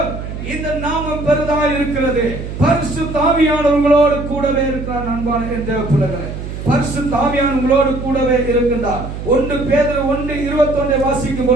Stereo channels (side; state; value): right; noise; hum, 8 dB below the sound